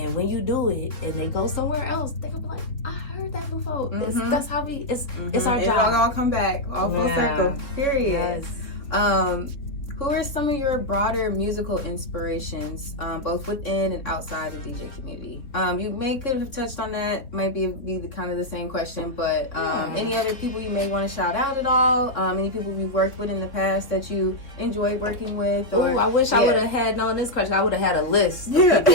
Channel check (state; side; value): late; right; 3.6 ms